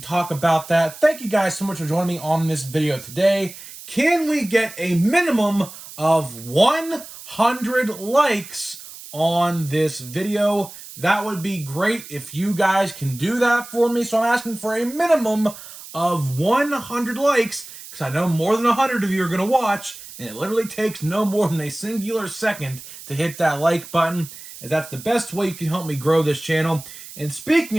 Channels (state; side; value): noise; right; hiss, 15 dB below the sound